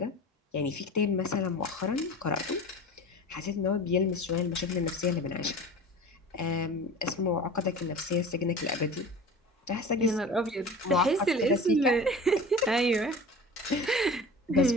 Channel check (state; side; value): normal; both; correlation 0.37